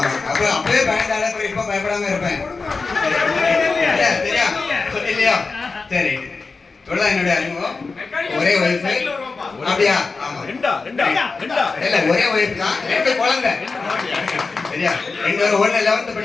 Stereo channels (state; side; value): quieter; right; 4.2 dB